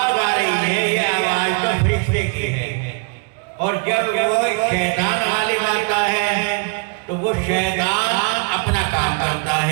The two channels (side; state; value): left; quieter; 36.0 dB